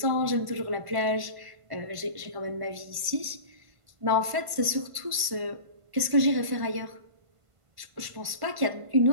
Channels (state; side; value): late; left; 1.5 ms